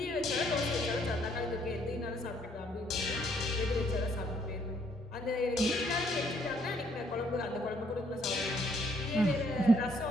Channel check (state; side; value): normal; both; correlation 0.68